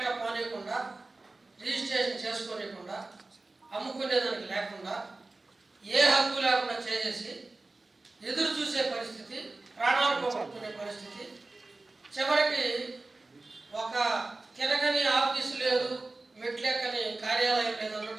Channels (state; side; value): quieter; left; 3.2 dB